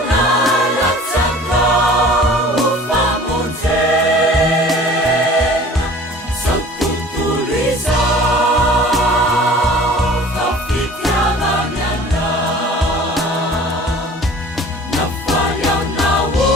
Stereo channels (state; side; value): normal; both; correlation 0.45